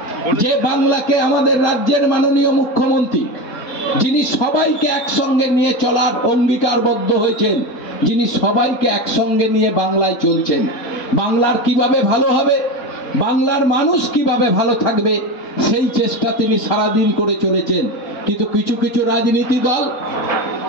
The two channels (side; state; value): right; late; 4.4 ms